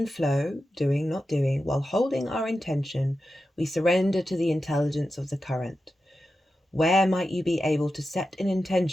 flow, doing, not doing, while holding our intention, we surrender to the intelligence of the current. Where might you be able to set an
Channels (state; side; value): normal; both; correlation 0.91